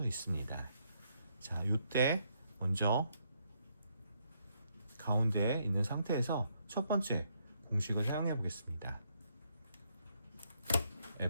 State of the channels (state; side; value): inverted; both; correlation -0.74